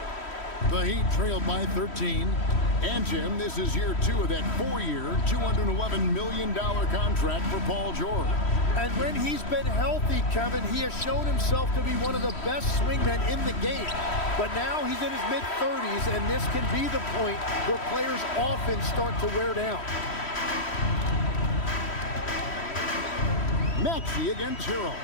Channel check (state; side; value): late; right; 3.1 ms